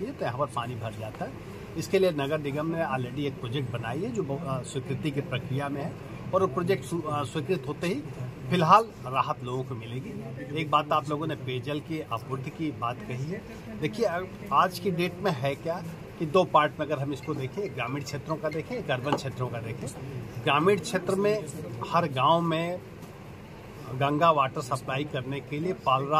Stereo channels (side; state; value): both; identical; correlation 1.00